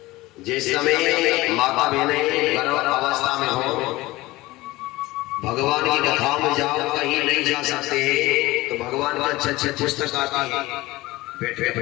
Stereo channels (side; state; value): right; quieter; 19.3 dB